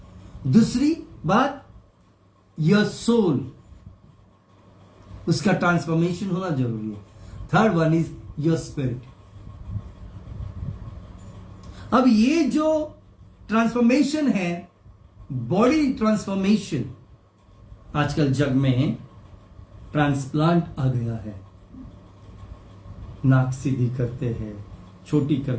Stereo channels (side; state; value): both; identical; correlation 1.00